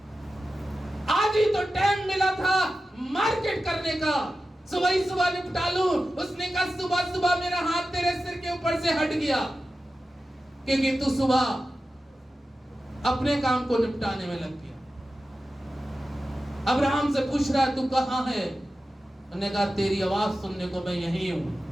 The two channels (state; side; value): normal; both; correlation 0.93